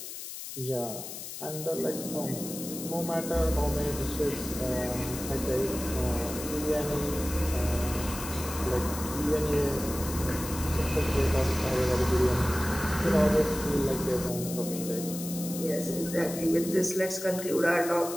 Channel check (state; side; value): noise; left; hiss, 9 dB below the sound